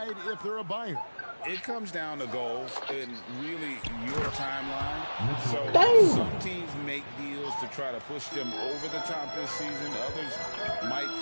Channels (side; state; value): both; inverted; correlation -1.00